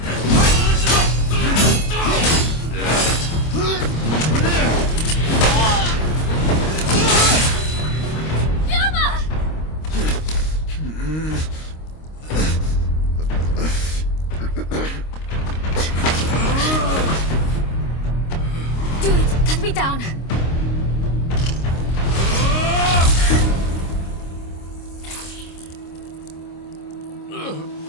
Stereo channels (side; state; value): right; late; 26 ms